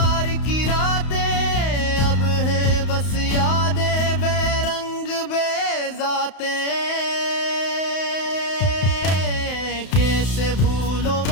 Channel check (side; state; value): right; late; 31 ms